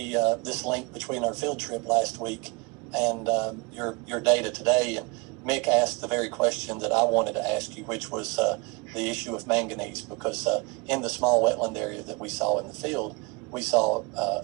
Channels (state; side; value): quieter; left; 28.1 dB